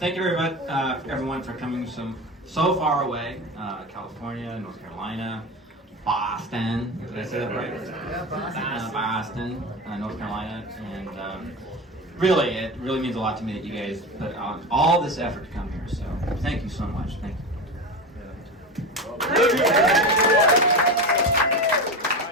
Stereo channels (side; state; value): both; normal; correlation 0.24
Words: you very much, everyone, for coming so far away. California, North Carolina, Boston. Did I say that right? Yeah, Boston, North Carolina, and really, it really means a lot to me that you guys put on all this effort to come here. So, thank you so much. Thank you.